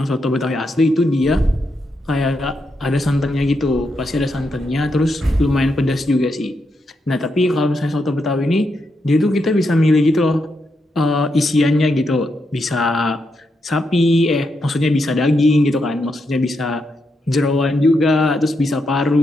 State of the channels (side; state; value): both; normal; correlation 0.82